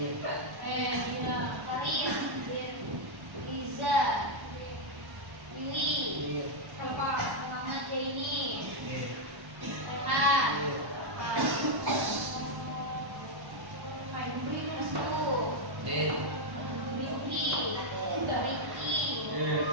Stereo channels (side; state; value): left; late; 1.1 ms